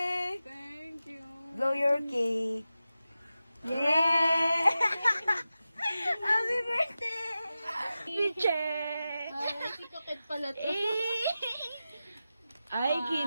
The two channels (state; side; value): inverted; both; correlation -0.93